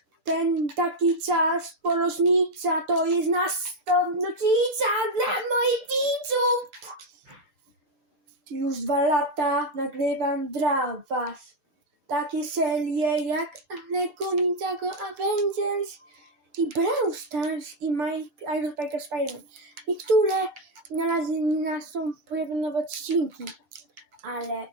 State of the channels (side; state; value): left; late; 6.8 ms